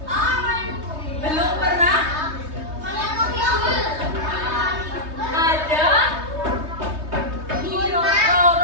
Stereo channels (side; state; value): left; late; 3.2 ms